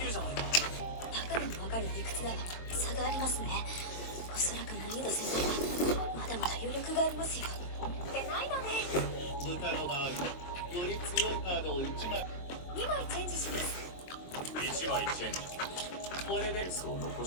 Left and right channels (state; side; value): late; right; 23 ms